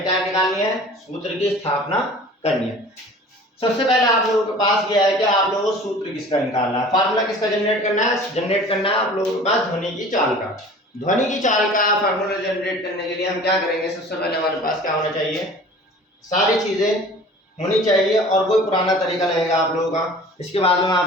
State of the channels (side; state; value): both; normal; correlation 0.44